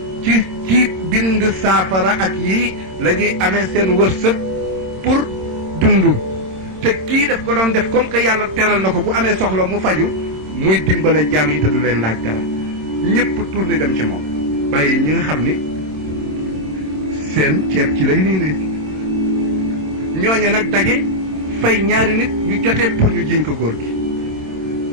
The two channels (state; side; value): late; left; 26 ms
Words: ci bind saafara ak yii la ñuy amee seen wërsëg pour dund te kii daf ko doon def comme que yàlla teral na ko bu amee soxla mu faju muy dimbale jaam yi te du leen laaj dara ñëpp tourné dem ci moom bàyyi ñi nga xam ni seen ceeb ci lay nii ne ñooñe nag daje fay ñaari nit ñu jotee pour ñu jiñ ko góor gi